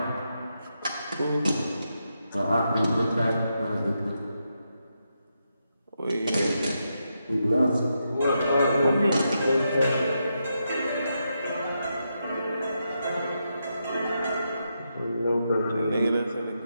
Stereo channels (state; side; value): inverted; both; correlation -0.84